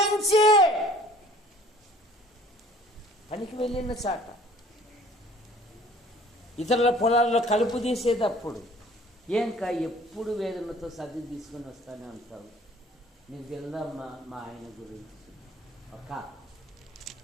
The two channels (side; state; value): both; normal; correlation 0.53